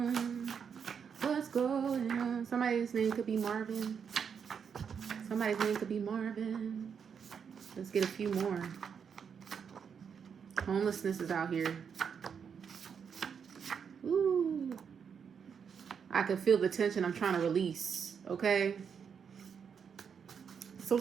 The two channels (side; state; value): left; quieter; 6.9 dB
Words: What's going on? Somebody's name could be Marvin. Somebody's name could be Marvin. Let's get a few more. Homelessness is out here. Ooh. I can feel the tension I'm trying to release. Okay? Some